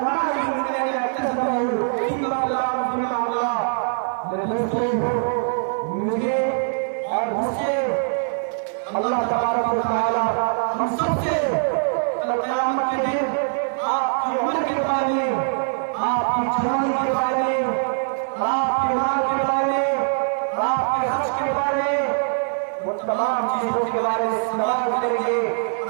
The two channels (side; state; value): left; silent; 61 dB below the other